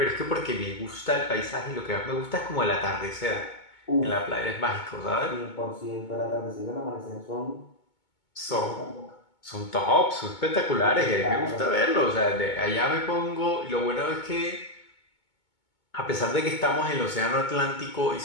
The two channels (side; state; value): right; late; 2.2 ms